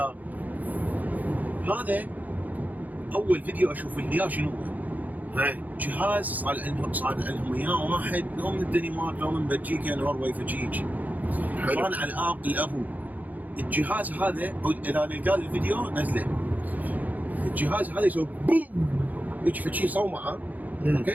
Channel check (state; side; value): late; left; 0.080 ms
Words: هذا اول فيديو اشوف اللي اياه شنو هو؟ جهاز صار لهم اياه واحد لو من الدنمارك لو من بلجيكا نرويج فجيج. كان على الابو. الجهاز هذا اذا لقى الفيديو نزله. الجهاز هذا يسوي بوم يجي فشي صومعه.